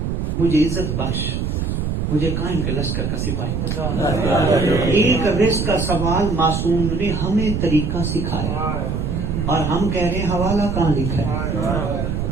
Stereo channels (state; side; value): noise; right; rumble, 1 dB below the sound